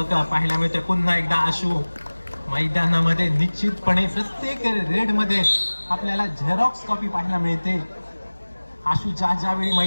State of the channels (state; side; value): inverted; both; correlation -1.00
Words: पाहायला मिळते. पुन्हा एकदा आशू मैदानामध्ये. निश्चितपणे प्रत्येक रेड मध्ये आपल्याला झेरॉक्स कॉपी पाहायला मिळते. आशू ज्यावेळी